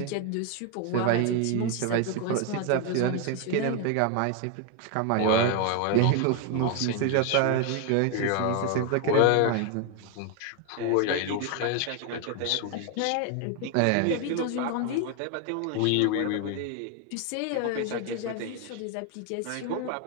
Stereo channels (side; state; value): both; different; correlation 0.01